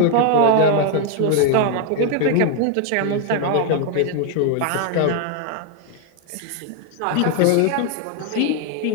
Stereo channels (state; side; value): different; both; correlation 0.00